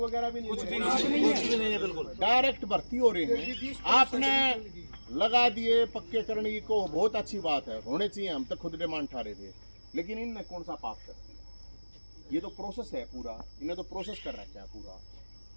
भी नहीं है, बिल्कुल डायरेक्ट भर्ती हो रही है। आपने लगा दिए पक्के करने की को बहुत अच्छी बात है, होने चाहिए, हम तो खुद डिमांड ठा रहे थे, लेकिन इनने कौन सा पाप कर दिया? ये तो प्रोसेस है पूरा, इन्हें तो प्रोसेस कर रखा है पूरा,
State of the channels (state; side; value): inverted; both; correlation -1.00